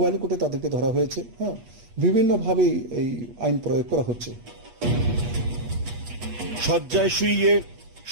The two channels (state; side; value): late; left; 8.3 ms